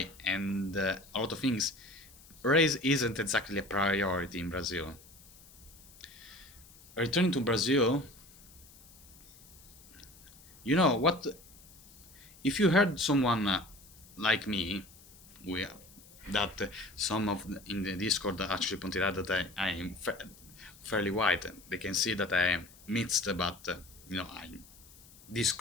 and a lot of things. Race isn't exactly a priority in Brazil. Returning to Brazil, you know what? If you heard someone like me, we, that some of in the Discord actually pointed out that I am fairly white. They can see that I am mixed, but I'm this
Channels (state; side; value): noise; left; hiss, 23 dB below the sound